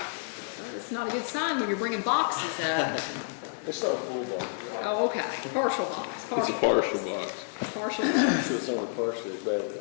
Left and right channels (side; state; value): right; silent; digital silence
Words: not a good sign when you're bringing boxes up. It's not a full box. Oh, okay. Partial box. It's a partial box. Partial box. It's only partially bad